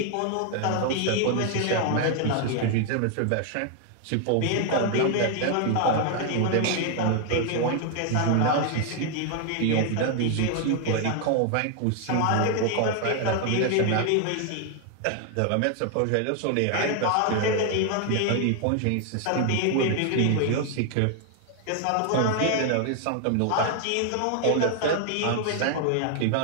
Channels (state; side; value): different; both; correlation 0.00